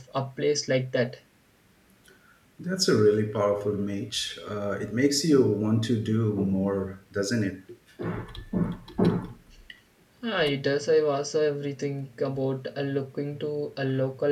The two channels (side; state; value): both; identical; correlation 1.00